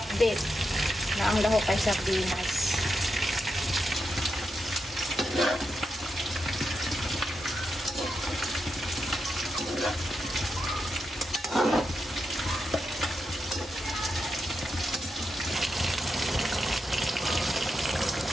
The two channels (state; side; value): normal; both; correlation 0.86